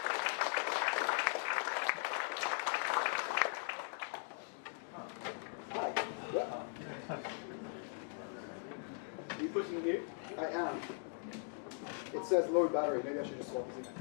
Are you pushing mute? I am. It says low battery. Maybe I should just swap this in.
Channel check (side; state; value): right; silent; 51 dB below the other